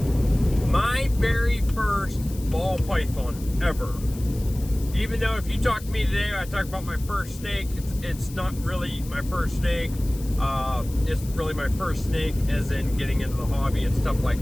my very first ball python ever. Even though if you talk to me today, I talk about my first snake, it's not really my first snake. It's really my first snake as in getting into the hobby and stuff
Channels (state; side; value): noise; left; hiss, 18 dB below the sound